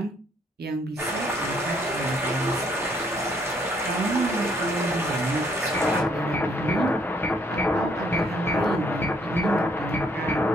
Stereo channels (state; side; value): normal; both; correlation 0.67